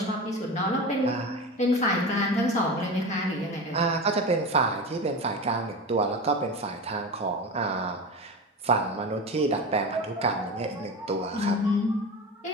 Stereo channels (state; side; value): normal; both; correlation 0.26